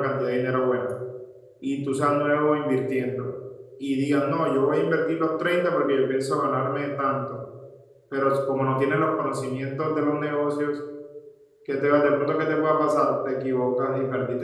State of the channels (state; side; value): identical; both; correlation 1.00